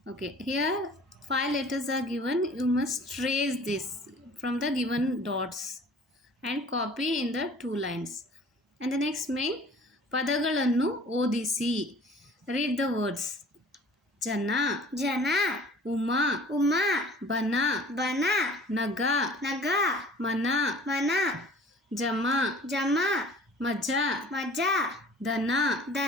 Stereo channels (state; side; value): normal; both; correlation 0.48